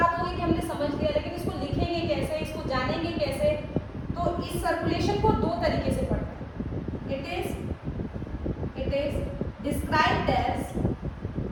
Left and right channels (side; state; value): both; identical; correlation 1.00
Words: होगी कि हमने समझ लिया, लेकिन इसको लिखेंगे कैसे, इसको जानेंगे कैसे? तो इस सर्कुलेशन को 2 तरीके से पढ़ना है। इट इज डिस्क्राइब्ड एज,